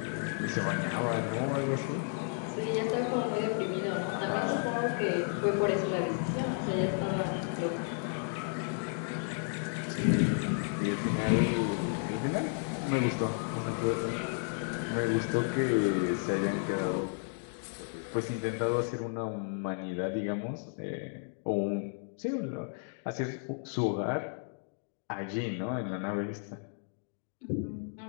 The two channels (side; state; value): right; silent; 56 dB below the other